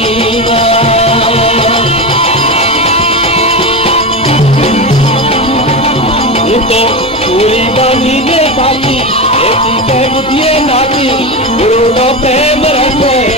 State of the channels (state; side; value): normal; both; correlation 0.19